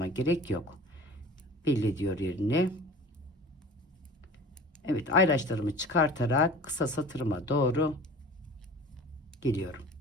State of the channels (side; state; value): both; normal; correlation 0.41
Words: gerek yok. Belli ediyor yerini. Evet, ayraçlarımı çıkartarak kısa satırıma doğru geliyorum.